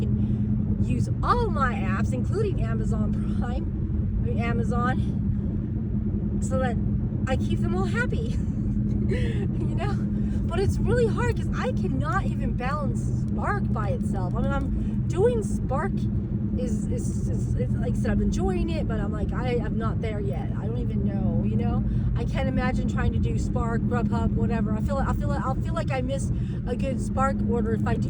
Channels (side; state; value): both; identical; correlation 1.00